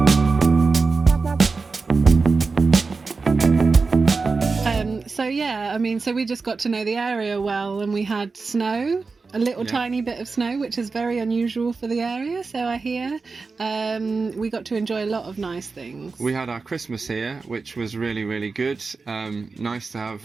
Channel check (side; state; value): left; quieter; 4.3 dB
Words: So we just got to know the area well, and we had snow. A little tiny bit of snow, which is very unusual for the area, so I hear. We got to enjoy a lot of nice things. We had our Christmas here, which was really, really good. Nice to have